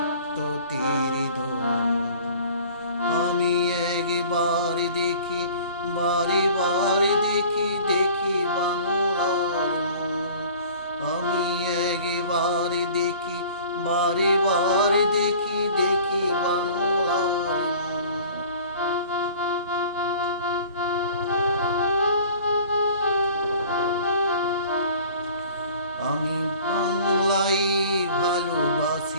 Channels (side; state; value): both; inverted; correlation -0.46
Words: তীর ধনুক। আমি একবার দেখি, বারে বারে দেখি, দেখি বাংলার মুখ। আমি একবার দেখি, বারে বারে দেখি, দেখি বাংলার মুখ। আমি বাংলায়